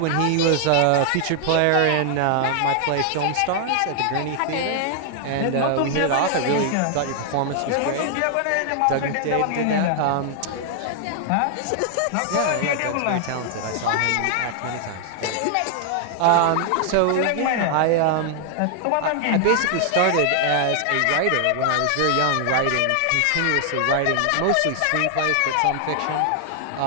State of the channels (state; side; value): different; both; correlation 0.00